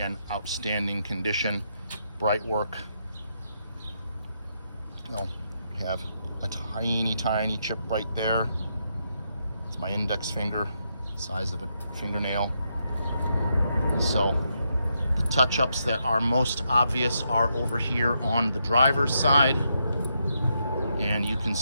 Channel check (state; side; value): inverted; both; correlation -0.81